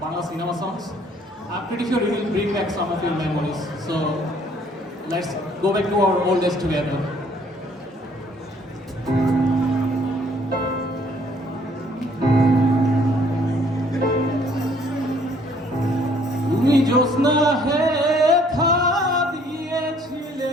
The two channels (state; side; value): normal; both; correlation 0.61